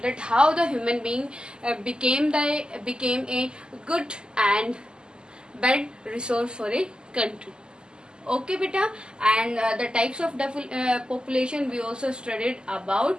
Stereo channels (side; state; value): left; late; 0.047 ms